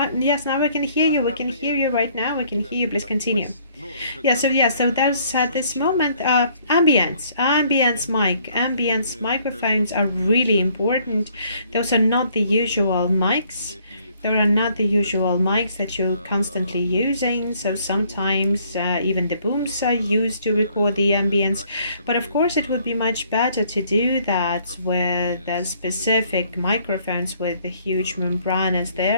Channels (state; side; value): inverted; both; correlation -0.63